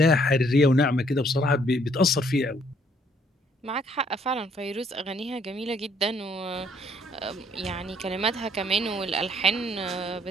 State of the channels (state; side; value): normal; both; correlation 0.65